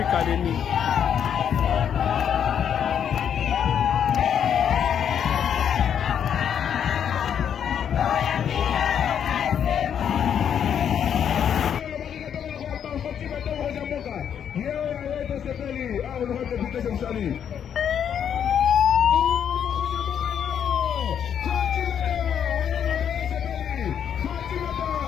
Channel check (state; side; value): quieter; right; 8.6 dB